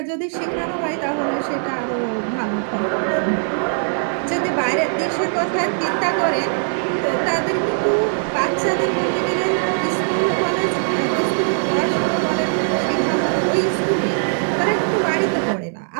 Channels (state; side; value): silent; left; digital silence